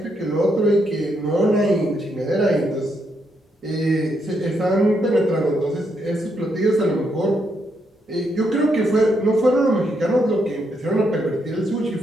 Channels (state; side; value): normal; both; correlation 0.78